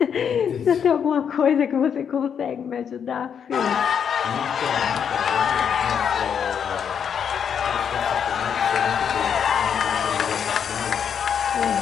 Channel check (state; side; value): quieter; right; 7.6 dB